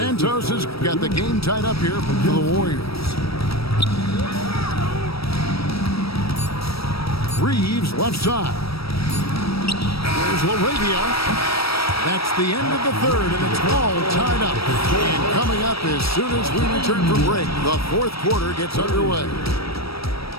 has got the game tied up here for the Warriors. Reeves left side. Here's LaRavia. That's the end of the third, and it's all tied up. And coming up as soon as we return from break, the fourth quarter gets underway.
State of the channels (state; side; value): late; right; 0.76 ms